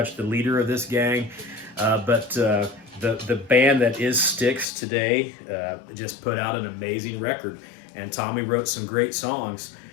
the leader of this gang. But the band that is Styx today just put out an amazing record, and Tommy wrote some great songs.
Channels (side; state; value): right; drops out; at 4.7 s